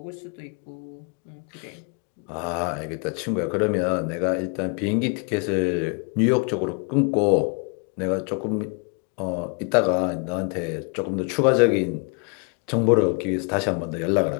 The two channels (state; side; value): quieter; right; 36.0 dB